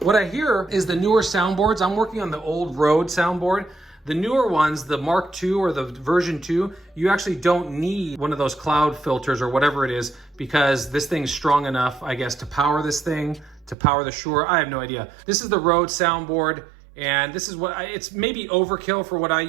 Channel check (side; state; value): left; drops out; at 13.8 s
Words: What I hear is the newer soundboards. I'm working on the old Rode soundboard. The newer ones, the Mark II or the version 2, you actually don't need one of those cloud filters or whatever it is because this thing's strong enough, I guess, to power this thing, to power the SHURE. I have no idea. This is the Rode soundboard, and this is what it's maybe overkill for what I